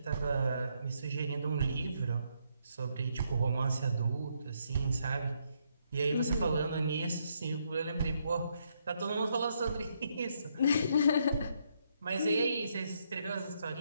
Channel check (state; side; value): inverted; both; correlation -0.75